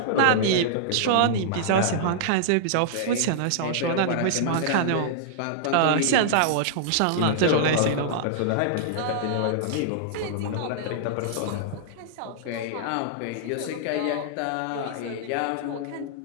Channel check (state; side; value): different; both; correlation -0.01